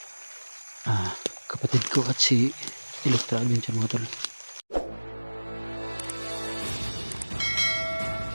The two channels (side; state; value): both; inverted; correlation -1.00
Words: kapatid ko at si Electra Adventure mga tol.